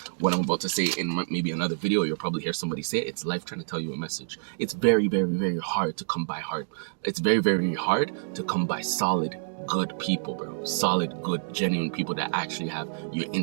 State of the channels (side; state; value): left; silent; digital silence